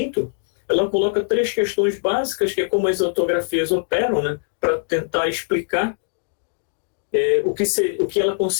ela coloca 3 questões básicas, que é como as autografias operam, né, para tentar explicar o que ela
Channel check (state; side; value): silent; right; digital silence